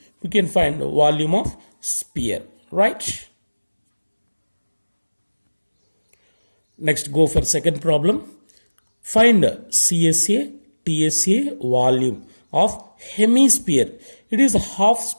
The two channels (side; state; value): both; inverted; correlation -1.00